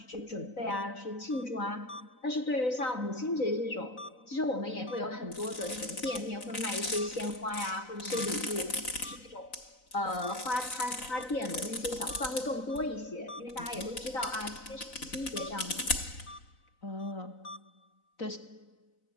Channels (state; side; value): late; right; 4.0 ms